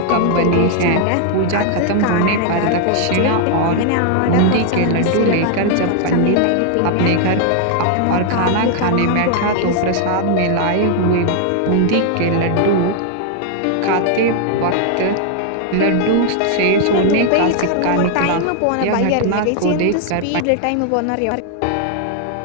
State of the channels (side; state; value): both; different; correlation 0.00